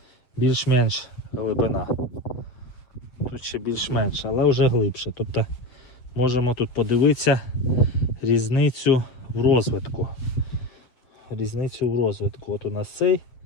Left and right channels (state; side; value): late; right; 8.2 ms